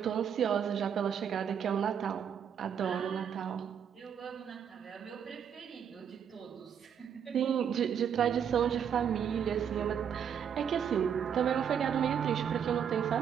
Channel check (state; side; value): quieter; left; 8.1 dB